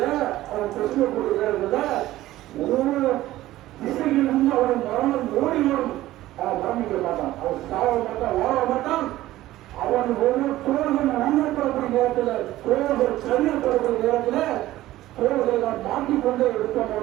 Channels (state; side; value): quieter; left; 15.6 dB